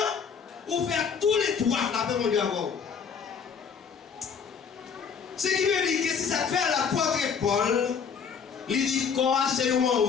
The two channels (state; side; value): quieter; right; 6.5 dB